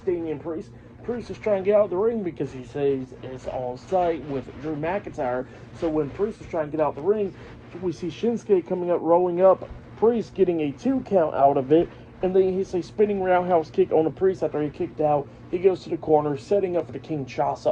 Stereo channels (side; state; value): both; identical; correlation 1.00